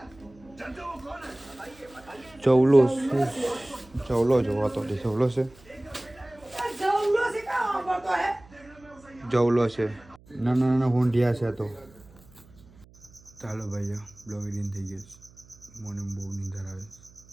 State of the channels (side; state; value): right; noise; hum, 25 dB below the sound